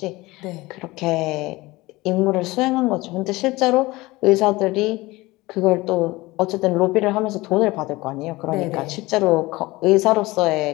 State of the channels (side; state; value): right; quieter; 20.6 dB